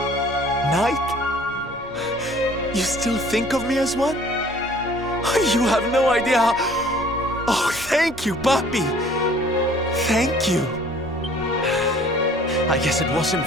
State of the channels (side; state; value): both; normal; correlation 0.53